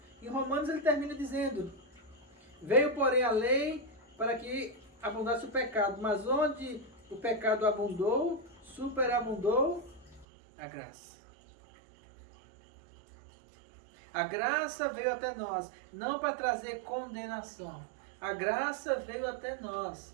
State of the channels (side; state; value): left; drops out; at 10.2 s